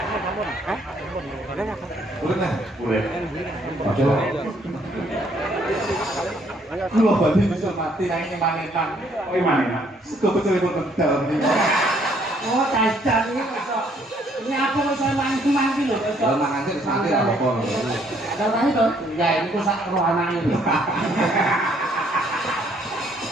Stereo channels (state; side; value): normal; both; correlation 0.66